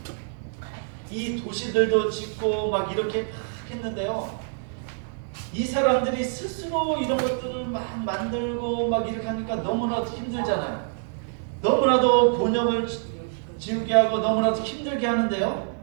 이 도시들도 짓고 막 이렇게 막 했는데요. 이 사람들이 스스로 이런 것들을 막 만들고 막 이렇게 하니까 너무나도 힘들잖아요. 너무나도 곤욕을 지우게 하고 너무나도 힘들게 하는데요.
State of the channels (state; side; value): silent; left; digital silence